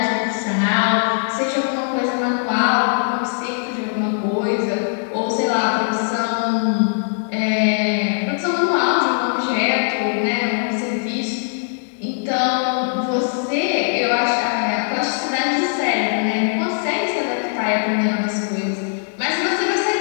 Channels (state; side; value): silent; right; 62 dB below the other